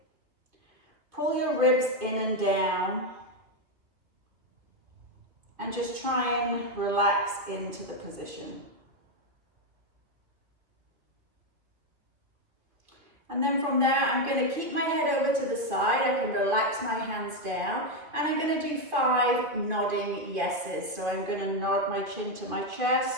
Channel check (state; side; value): late; left; 2.3 ms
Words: Pull your ribs in and down and just try and relax into the position. And then from there, I'm going to keep my head over to the side. I can relax my hands down. And I'm going to do 5 nodding yeses. So I'm going to nod my chin to my